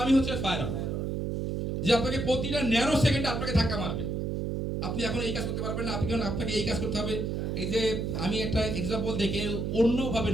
হচ্ছে ফায়ার অন, যে আপনাকে প্রতিটা ন্যানো সেকেন্ডে আপনাকে ধাক্কা মারবে। আপনি এখন এই কাজ করতে পারবেন না, আপনাকে এই কাজ করতে হবে। এই যে আমি একটা এক্সাম্পল দেখে অন্যভাবে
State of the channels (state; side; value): noise; right; hum, 1 dB below the sound